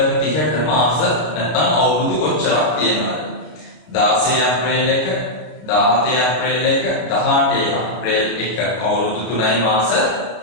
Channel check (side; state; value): right; late; 32 ms